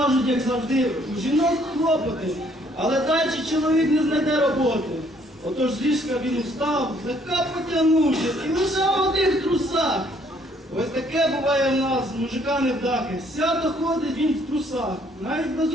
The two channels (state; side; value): normal; both; correlation 0.64